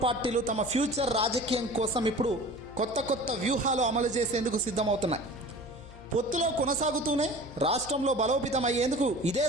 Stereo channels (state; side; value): noise; left; hum, 18 dB below the sound